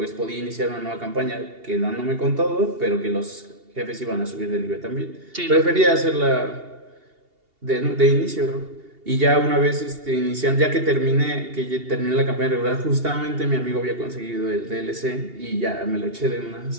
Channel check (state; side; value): late; left; 2.8 ms